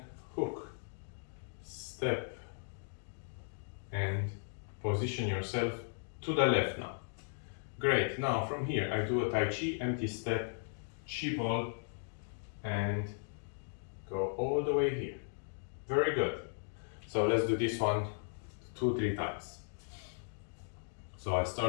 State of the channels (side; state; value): right; silent; digital silence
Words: hook, step, and position yourself to the left now. Great, now from here I do a Tai Chi, empty step, Chi ball, and go all the way here. Very good. So let's do this one 2-3 times. So I